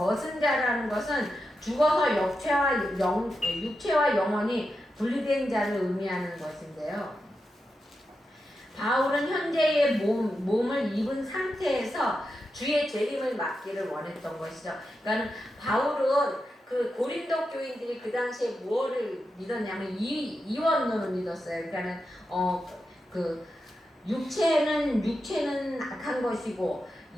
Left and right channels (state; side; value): normal; both; correlation 0.88